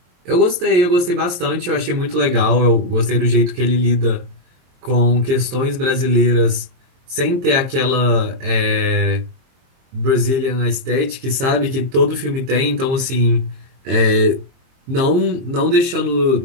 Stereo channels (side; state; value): left; late; 23 ms